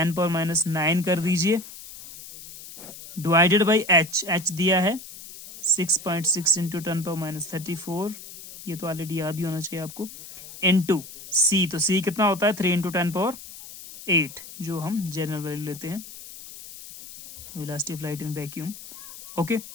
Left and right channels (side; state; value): left; noise; hiss, 15 dB below the sound